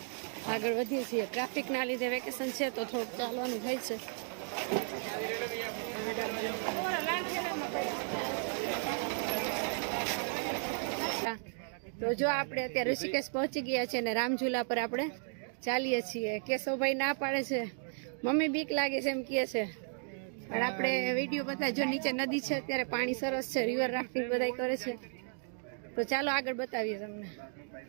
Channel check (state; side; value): silent; left; 55 dB below the other